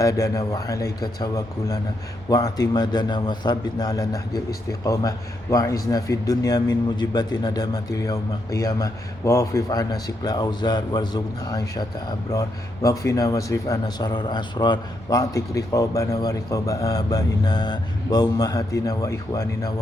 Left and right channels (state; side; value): normal; both; correlation 0.80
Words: wa alaika tawakkulana wa atimadana wa thabitna ala nahjil istiqamah wa izna fid dunya min mujibati nadamatil yawma qiyamah wa wafif ana sikla warzuqna aisyata abrar waqfina wasrif ana sarar asrar wa'tik riqabana wa riqaba abaina wa ummahatina wa ikhwanina